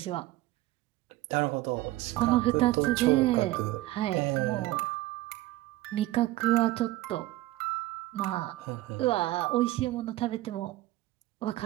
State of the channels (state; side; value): quieter; left; 16.9 dB